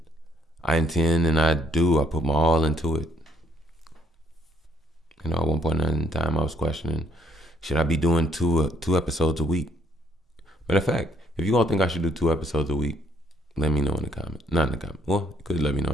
I intend and I put my all into it. You know, at one point in time I was questioning, should I be doing two episodes a week? Matter of fact, if you all think I should do 2 episodes a week, let me know in the comments. Not in the comments. Well, you could let me know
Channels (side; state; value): both; normal; correlation 0.68